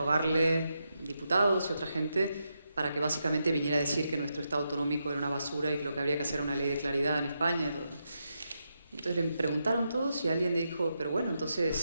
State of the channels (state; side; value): inverted; both; correlation -0.84